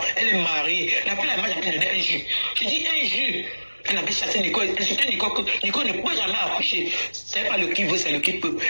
Elle est mariée. La fille là, moi, j'ai donné un jus. Je dis un jus. Elle avait chassé Nicole, insulté Nicole, que Nicole ne peut jamais accoucher. C'est pas le qui veut, c'est le qui peut.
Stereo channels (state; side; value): inverted; both; correlation -1.00